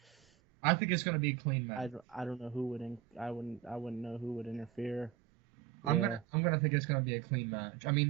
I think it's gonna be a clean match. I don't know who would I wouldn't know who would interfere. Yeah. I'm gonna think it's gonna be a clean match. I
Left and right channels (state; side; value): quieter; left; 11.0 dB